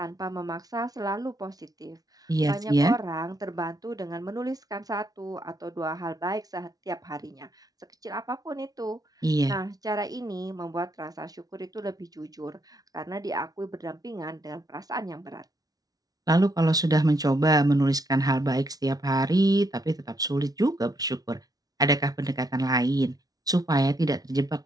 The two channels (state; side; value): late; left; 0.18 ms